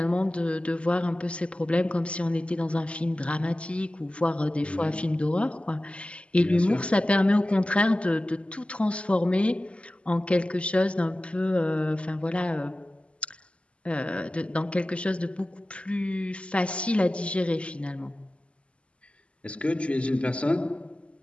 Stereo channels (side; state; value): right; late; 0.058 ms